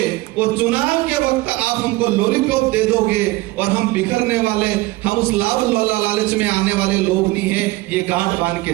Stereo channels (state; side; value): quieter; left; 19.9 dB